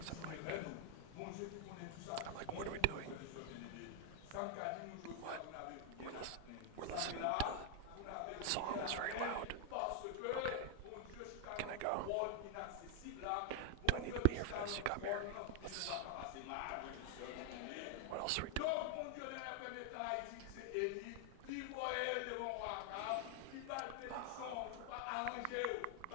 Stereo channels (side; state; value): both; different; correlation 0.00